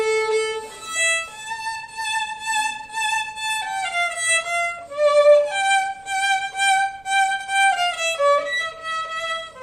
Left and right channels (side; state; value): right; noise; rumble, 30 dB below the sound